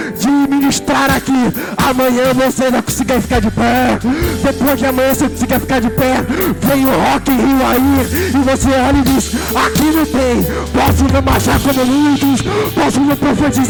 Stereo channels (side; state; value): both; identical; correlation 1.00